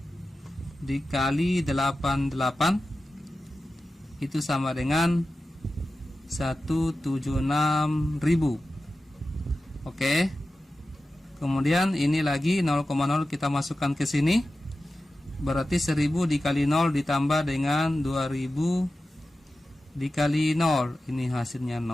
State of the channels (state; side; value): normal; both; correlation 0.93